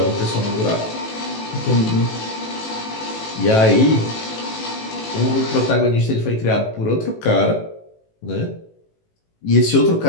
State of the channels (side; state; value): right; late; 18 ms